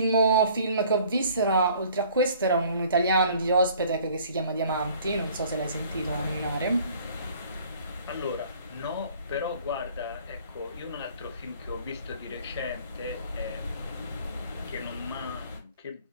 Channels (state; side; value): inverted; both; correlation -0.54